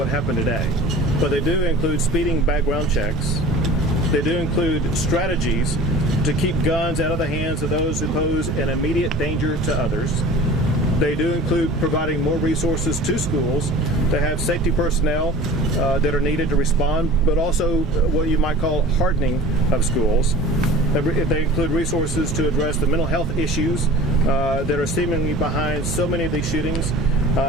happened today. But they do include speeding background checks. They do include strategies to keep guns out of the hands of those who pose an immediate danger to others. They do include providing more resources to schools to have safety personnel that are needed to respond, but also what you might call hardening of schools. They include resources to address the mental health issues that are seemingly behind so many of these shootings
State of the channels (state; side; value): normal; both; correlation 0.41